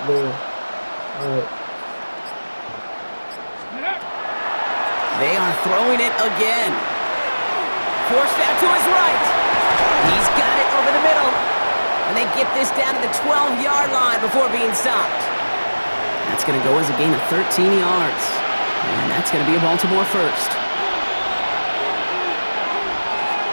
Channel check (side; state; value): both; inverted; correlation -1.00